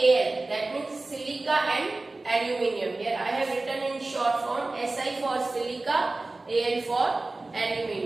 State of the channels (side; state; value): left; quieter; 3.1 dB